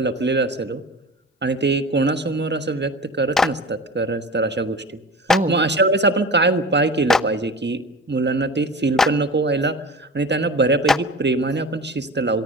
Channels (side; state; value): both; normal; correlation 0.34